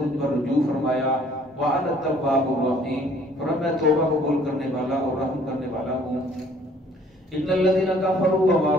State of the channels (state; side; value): normal; both; correlation 0.58